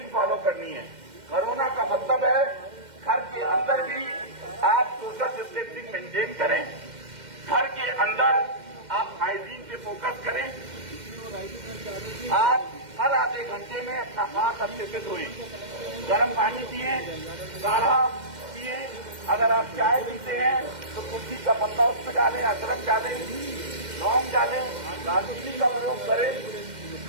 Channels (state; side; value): late; left; 2.1 ms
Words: फॉलो करनी है। कोरोना का मतलब है घर के अंदर भी आप सोशल डिस्टेंसिंग मेंटेन करें, घर के अंदर आप हाइजीन पे फोकस करें। आप हर आधे घंटे में अपना हाथ अच्छे से धोएं, गर्म पानी पिए, काढ़ा पिए। अगर आप चाय पीते हैं तो तुलसी का पत्ता उसमें डालें, अदरक डालें, लौंग डालें, दालचीनी का प्रयोग करें।